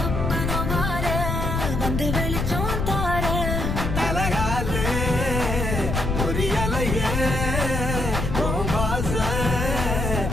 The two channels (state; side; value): noise; left; rumble, 1 dB below the sound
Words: மாற வந்து வெளிச்சம் தார தலகாலே பொரியலையே பாச